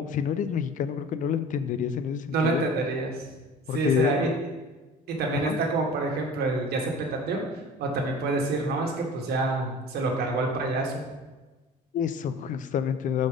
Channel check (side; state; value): both; normal; correlation 0.41